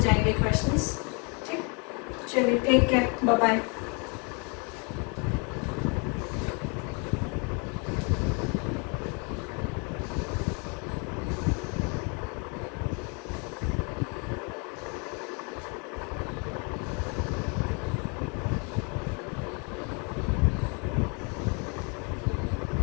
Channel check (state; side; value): quieter; right; 34.2 dB